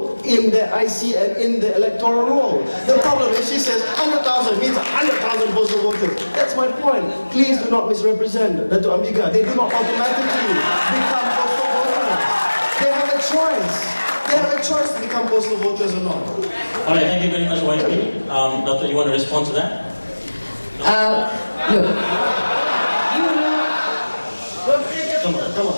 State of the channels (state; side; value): inverted; both; correlation -1.00